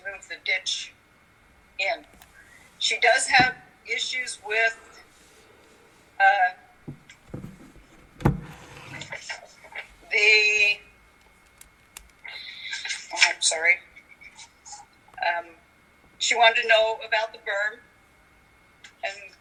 move the ditch in. She does have issues with she wanted to know about the berm, and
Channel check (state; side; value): identical; both; correlation 1.00